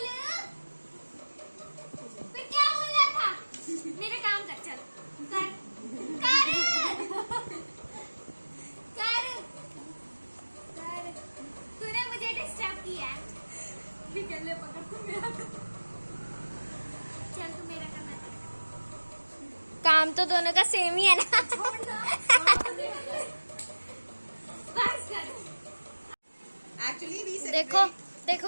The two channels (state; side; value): inverted; both; correlation -1.00